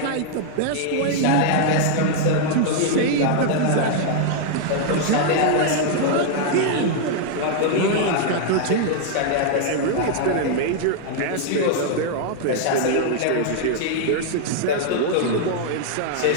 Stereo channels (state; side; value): different; both; correlation 0.00